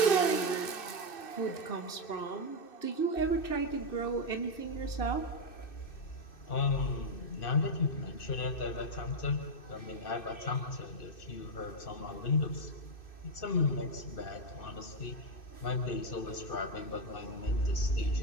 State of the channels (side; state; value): right; late; 2.6 ms